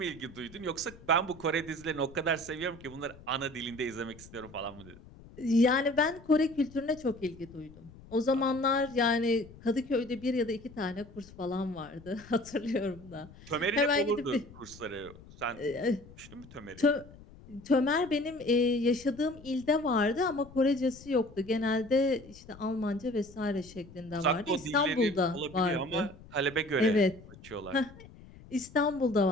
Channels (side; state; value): left; noise; rumble, 20 dB below the sound